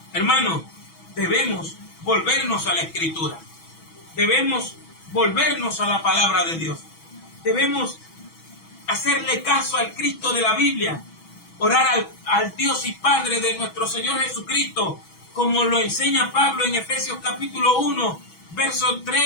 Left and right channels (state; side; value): late; right; 6.1 ms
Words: Hermano, debemos volvernos a la Escritura. Debemos volvernos a la palabra de Dios. Debemos hacerle caso al Cristo de la Biblia, orar al Dios y Padre de nuestro Señor Jesucristo, como lo enseña Pablo en Efesios capítulo 1, verso